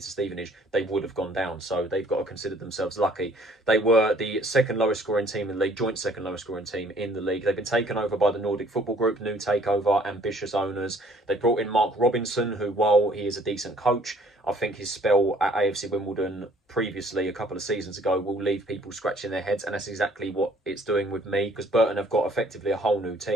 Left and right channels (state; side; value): normal; both; correlation 0.59